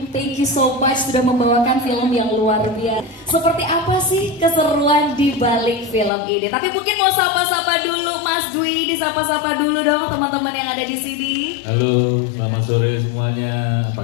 thank you so much sudah membawakan film yang luar biasa. Seperti apa sih keseruan di balik film ini? Tapi mungkin mau sapa-sapa dulu Mas Dwi, disapa-sapa dulu dong teman-teman yang ada di sini. Halo, selamat sore semuanya. Apa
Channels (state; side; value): drops out; right; at 6.1 s